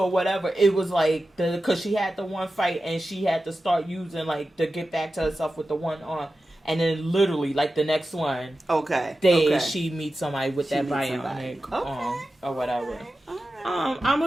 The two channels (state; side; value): normal; both; correlation 0.93